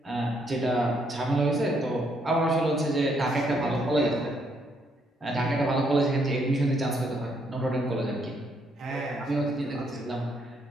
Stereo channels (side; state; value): both; normal; correlation 0.72